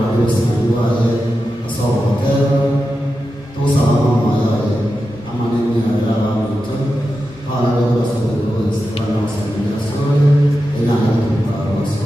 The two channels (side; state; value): both; normal; correlation 0.90